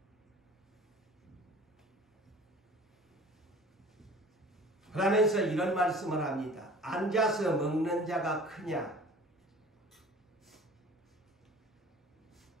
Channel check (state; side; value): normal; both; correlation 0.46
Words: 그러면서 이런 말씀을 합니다. 앉아서 먹는 자가 크냐?